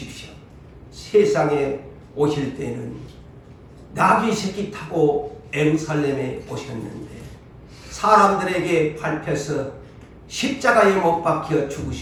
세상에 오실 때는 나귀 새끼 타고 예루살렘에 오셨는데 사람들에게 밟혀서 십자가에 못 박혀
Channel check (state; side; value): identical; both; correlation 1.00